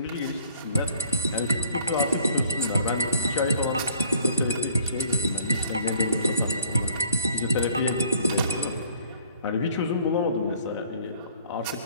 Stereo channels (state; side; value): inverted; both; correlation -0.56